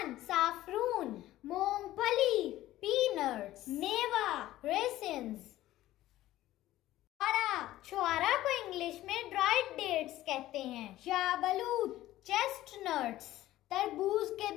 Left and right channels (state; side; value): quieter; right; 15.1 dB